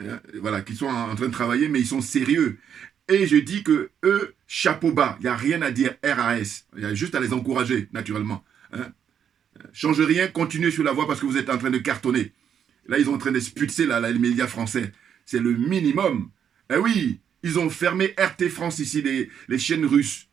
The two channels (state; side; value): quieter; left; 8.4 dB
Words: voilà, qui sont en train de travailler, mais ils sont sérieux. Et je dis que eux, chapeau bas, il n'y a rien à dire RAS. Il y a juste à les encourager, naturellement. Change rien, continuez sur la voie parce que vous êtes en train de cartonner. Là, ils sont en train d'expulser les médias français. C'est le minimum. Eh oui, ils ont fermé RT France ici, les chaînes russes.